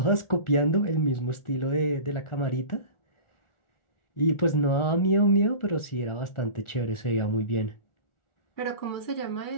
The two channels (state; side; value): late; right; 1.4 ms